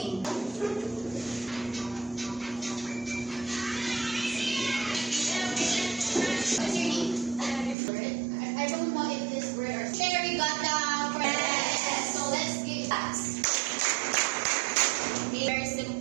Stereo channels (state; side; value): drops out; left; at 7.8 s